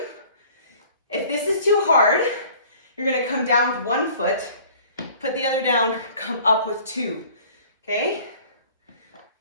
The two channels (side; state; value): both; inverted; correlation -0.50